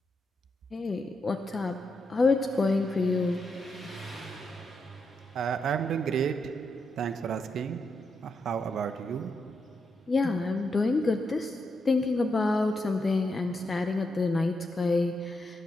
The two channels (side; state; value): both; normal; correlation 0.83